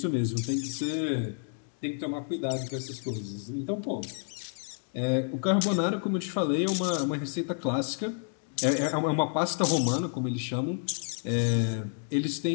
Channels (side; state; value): right; silent; 58 dB below the other